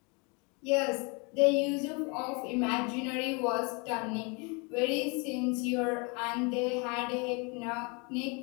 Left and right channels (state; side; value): quieter; right; 31.4 dB